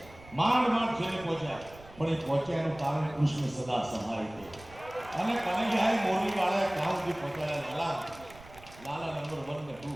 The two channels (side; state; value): right; noise; rumble, 20 dB below the sound